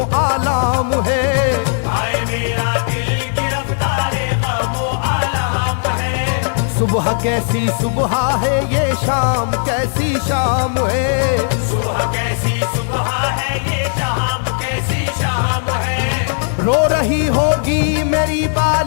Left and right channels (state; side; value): silent; right; 62 dB below the other